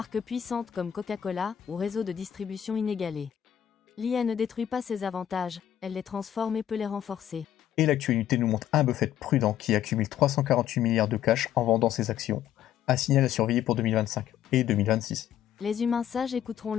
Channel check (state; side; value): quieter; right; 10.7 dB